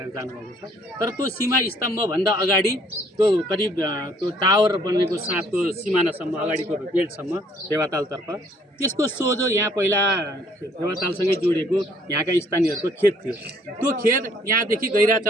जानुभएको छ। तर त्यो सीमा स्तम्भभन्दा अगाडि त्यो करिब त्यो टावर बनेको साथको सिमानासम्म अगाडिको बेल्टसम्म फेवातालतर्फ, त्यसको सोझो यहाँ पहिला फेवातालसँगै जोडिएको यहाँका स्थानीयहरूको खेत थियो। त्यो खेत यहाँदेखि गैरा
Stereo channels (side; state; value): both; normal; correlation 0.62